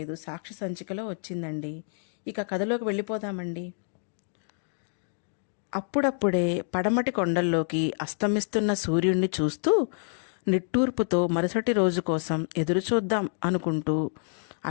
సాక్షి సంచికలో వచ్చిందండి. ఇక కథలోకి వెళ్ళిపోదామండి. అప్పుడప్పుడే పడమటి కొండల్లోకి అస్తమిస్తున్న సూర్యుణ్ణి చూస్తూ నిట్టూర్పుతో మరుసటి రోజు కోసం ఎదురుచూద్దాం అనుకుంటూ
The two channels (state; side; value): silent; right; 59 dB below the other